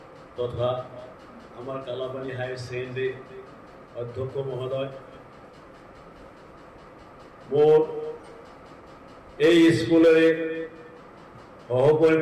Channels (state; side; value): identical; both; correlation 1.00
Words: তথা আমাৰ কালাপানী হায়াৰ ছেকেণ্ডেৰী অধ্যক্ষ মহোদয়, মোৰ এই স্কুলৰে